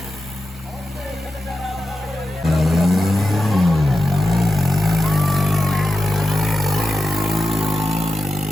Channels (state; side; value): normal; both; correlation 0.91